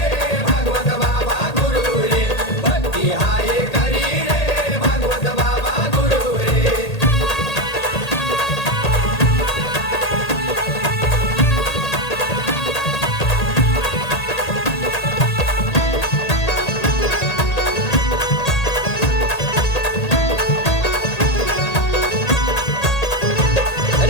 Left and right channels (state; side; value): late; right; 1.8 ms